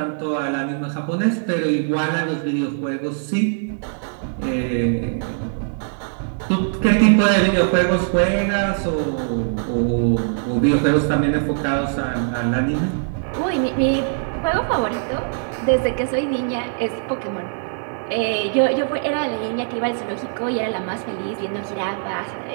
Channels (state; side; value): silent; left; digital silence